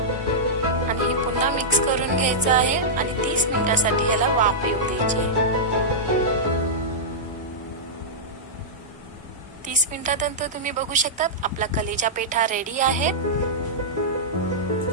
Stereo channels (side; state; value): both; normal; correlation -0.12